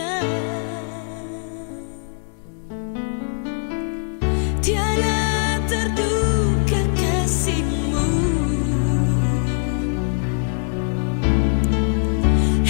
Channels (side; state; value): right; silent; 65 dB below the other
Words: Tiada terduga kasih-Mu,